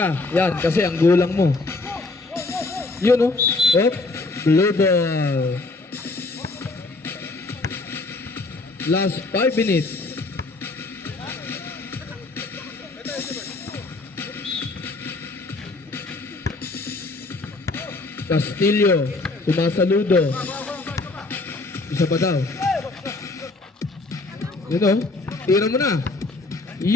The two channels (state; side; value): quieter; right; 3.3 dB